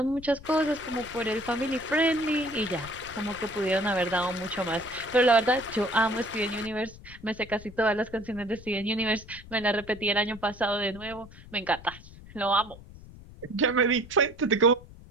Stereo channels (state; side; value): noise; left; rumble, 18 dB below the sound